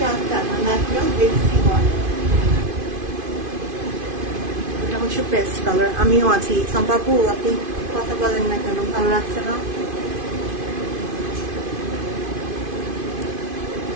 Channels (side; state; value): left; late; 2.5 ms